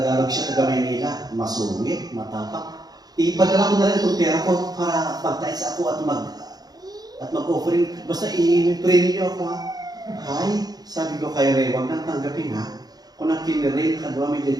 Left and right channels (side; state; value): left; late; 0.19 ms